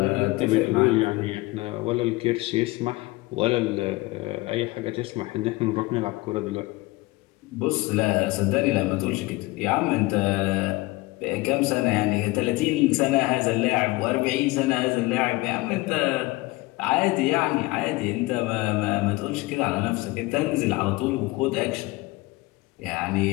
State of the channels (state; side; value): quieter; right; 21.6 dB